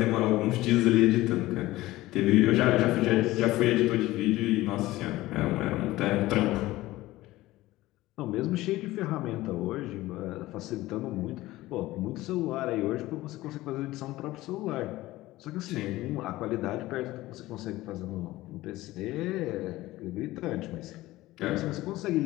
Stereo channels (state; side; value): quieter; right; 17.5 dB